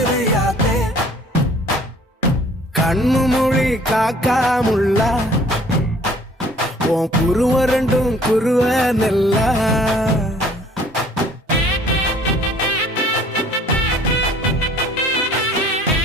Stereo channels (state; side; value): normal; both; correlation 0.55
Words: கண்ணு மொழி காக்காமுள்ள உன் குருவ ரெண்டும் குருவ நெல்லா